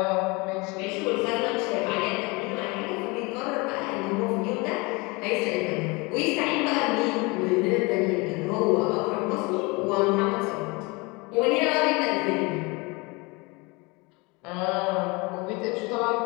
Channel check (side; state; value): right; quieter; 26.4 dB